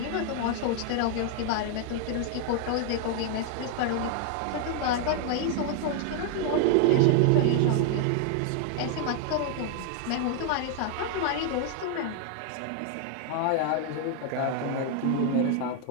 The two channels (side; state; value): both; different; correlation 0.00